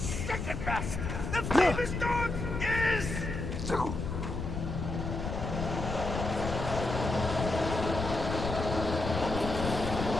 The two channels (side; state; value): left; noise; rumble, 4 dB below the sound